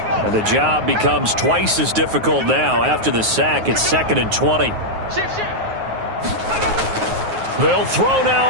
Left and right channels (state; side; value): late; left; 9.4 ms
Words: The job becomes twice as difficult now. After the sack, it's 2nd and 20. They'll throw now